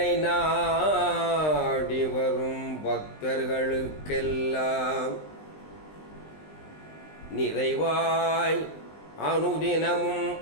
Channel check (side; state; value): right; late; 20 ms